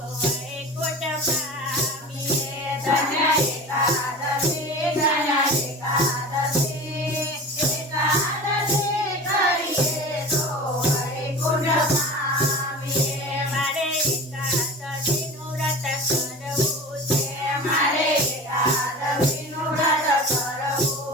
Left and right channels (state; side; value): normal; both; correlation 0.34